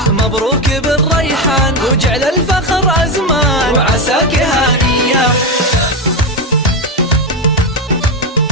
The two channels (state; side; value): normal; both; correlation 0.12